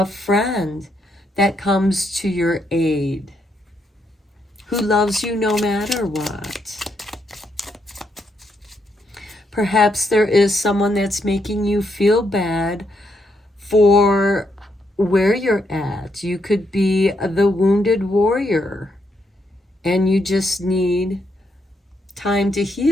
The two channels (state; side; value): normal; both; correlation 0.78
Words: friend that comes to your aid, who loves you no matter what. Perhaps there is someone that's making you feel bad for where you're at. You could be the wounded warrior and you just need time to